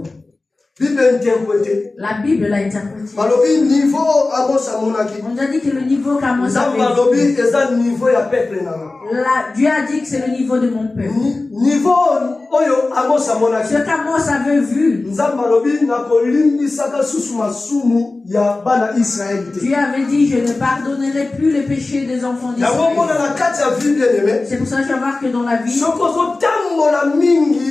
La Bible l'a interprété. On a dit que le niveau qu'Amos avait vu, Dieu a dit que c'est le niveau de mon peuple. Ce qu'Amos avait vu, Dieu avait dit, je ne pardonnerai plus les péchés des enfants d'Israël. C'est pour ça que je vais voir que dans la vie, si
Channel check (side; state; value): right; quieter; 3.3 dB